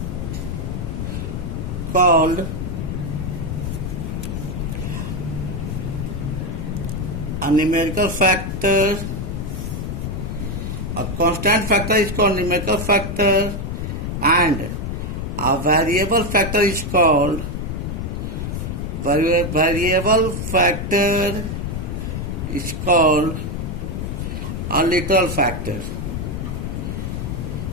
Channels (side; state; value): left; noise; rumble, 4 dB below the sound